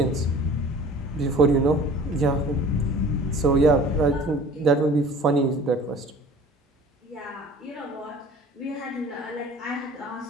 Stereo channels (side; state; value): both; normal; correlation 0.46